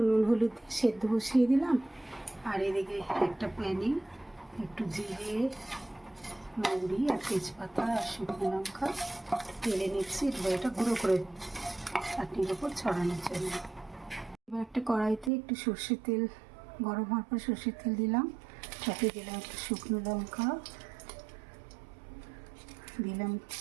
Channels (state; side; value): drops out; left; at 15.3 s